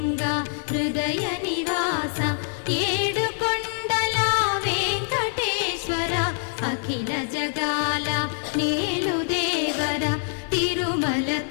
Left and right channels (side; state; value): right; silent; digital silence